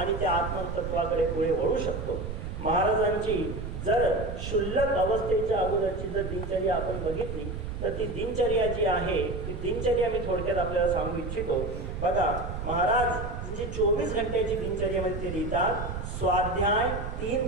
त्या आत्मतत्वाकडे पुढे वळू शकतो. महाराजांची जर क्षुल्लक अवस्थेच्या अगोदरची जर दिनचर्या आपण बघितली तर ती दिनचर्या जी आहे ती दिनचर्या मी थोडक्यात आपल्याला सांगू इच्छितो. बघा, महाराज म्हणजे 24 घंट्याची दिनचर्यामध्ये ते लिहितात, स्वाध्याय 3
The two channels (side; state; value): right; noise; rumble, 6 dB below the sound